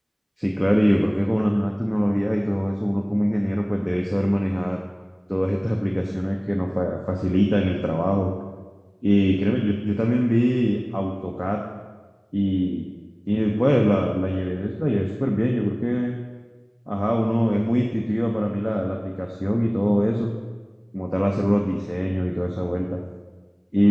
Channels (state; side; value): identical; both; correlation 1.00